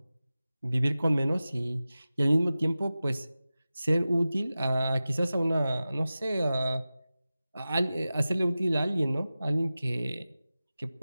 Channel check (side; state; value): both; inverted; correlation -0.95